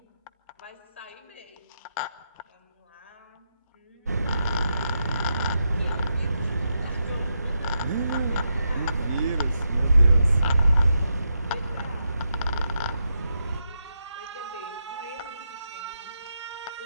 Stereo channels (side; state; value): both; inverted; correlation -0.84